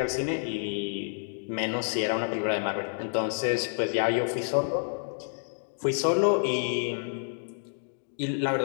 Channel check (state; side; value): silent; right; digital silence